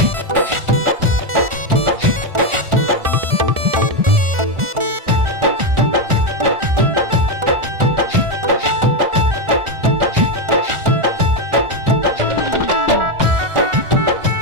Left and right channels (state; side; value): late; left; 1.4 ms